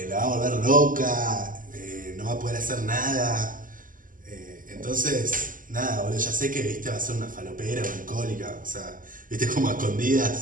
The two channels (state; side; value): late; left; 0.39 ms